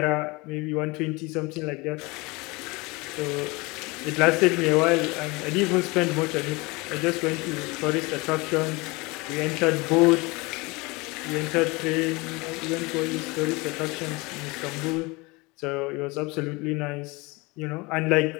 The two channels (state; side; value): quieter; right; 25.1 dB